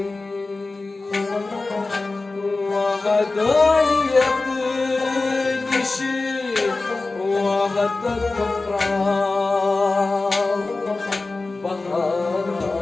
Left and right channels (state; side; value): quieter; right; 3.5 dB